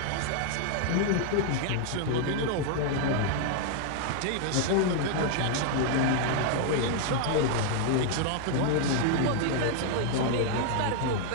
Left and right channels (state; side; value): different; both; correlation 0.00